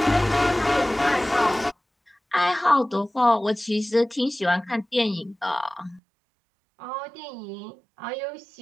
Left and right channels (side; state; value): left; drops out; at 6.0 s